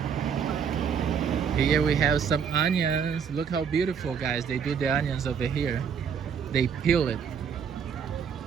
Here we have some onions. Look how beautiful, guys. They do the onions over here. They peel it.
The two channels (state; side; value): quieter; left; 7.1 dB